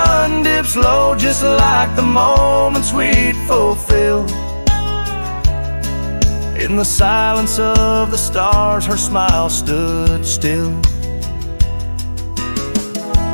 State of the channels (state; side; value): inverted; both; correlation -1.00